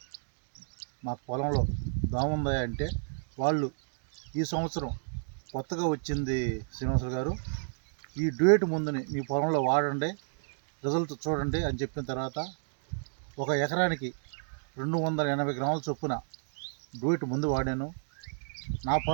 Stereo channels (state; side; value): silent; left; digital silence